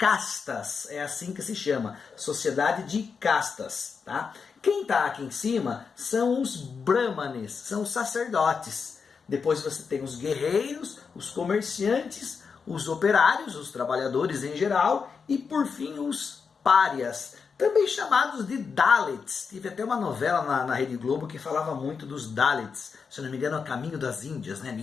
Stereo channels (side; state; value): right; quieter; 5.6 dB